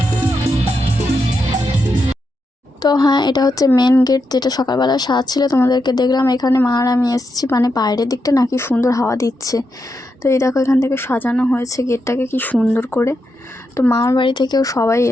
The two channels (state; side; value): normal; both; correlation 0.84